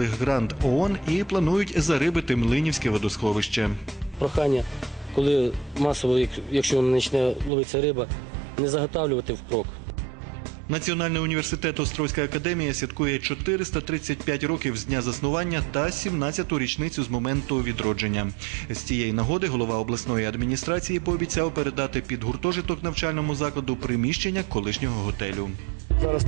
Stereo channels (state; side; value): drops out; left; at 7.5 s